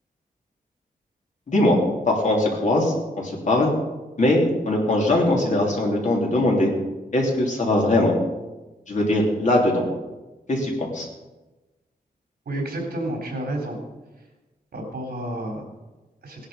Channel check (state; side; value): normal; both; correlation 0.63